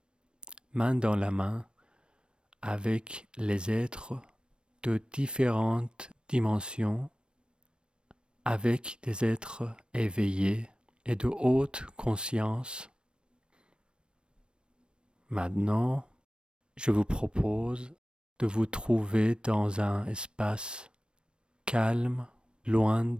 main dans la main avec les êtres de différentes dimensions, avec des êtres éveillés et de haute conscience. Maintenant, je vous propose de vous trouver dans un espace calme, loin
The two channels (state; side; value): late; left; 0.054 ms